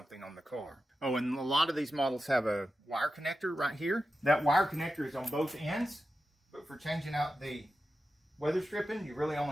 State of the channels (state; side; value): normal; both; correlation 0.91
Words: on the car. Oh, and a lot of these models have a wire connector right here. That wire connector is on both ends, but for changing out the weather stripping, you really